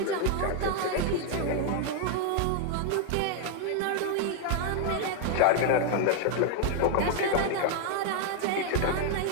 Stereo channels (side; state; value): both; different; correlation 0.00